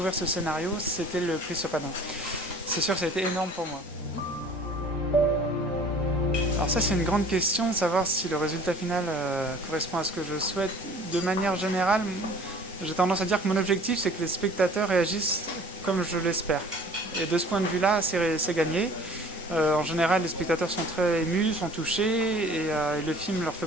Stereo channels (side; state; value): both; normal; correlation 0.49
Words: ce scénario, c'était le prix Sopadin. C'est sûr que ça a été énorme pour moi. Alors ça, c'est une grande question, savoir si le résultat final correspond à ce que je souhaite. De manière générale, j'ai tendance à dire que mon objectif, c'est que les spectateurs réagissent comme je l'espère. Et de ce point de vue-là, c'est gagné. En général, les spectateurs sont très émus, sont touchés, et le film leur fait